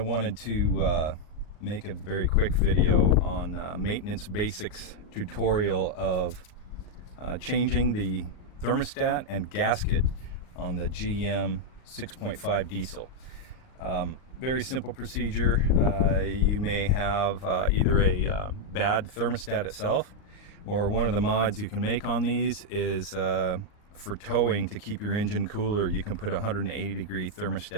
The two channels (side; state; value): right; late; 38 ms